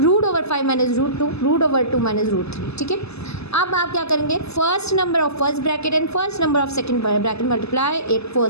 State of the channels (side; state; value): right; late; 0.79 ms